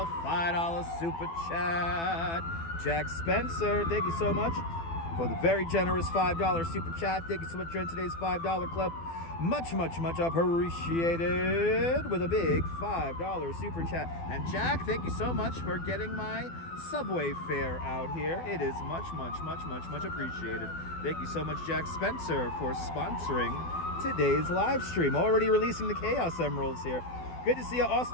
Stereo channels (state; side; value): late; right; 12 ms